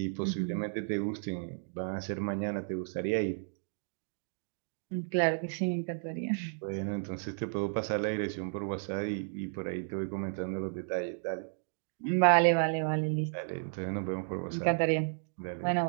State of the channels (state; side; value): silent; left; digital silence